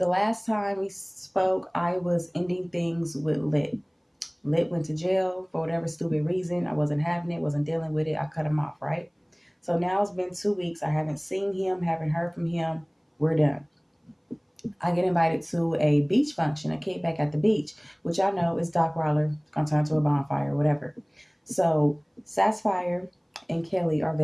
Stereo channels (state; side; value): identical; both; correlation 1.00